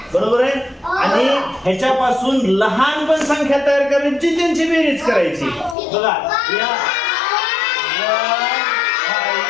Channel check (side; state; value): right; drops out; at 5.8 s